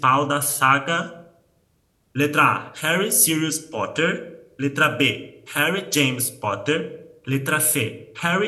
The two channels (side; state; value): both; identical; correlation 1.00